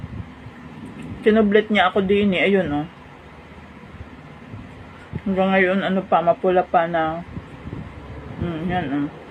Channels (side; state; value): both; identical; correlation 1.00